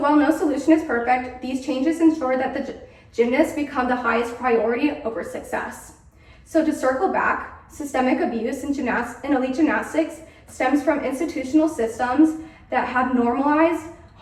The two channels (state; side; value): identical; both; correlation 1.00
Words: no solution is perfect, these changes ensure that the gymnasts become the highest priority over success. So to circle back, systemic abuse in elite gymnastics stems from institutional systems that have normalized